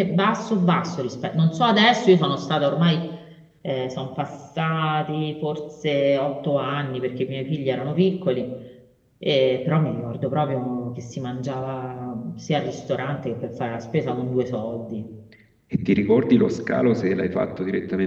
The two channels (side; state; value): both; identical; correlation 1.00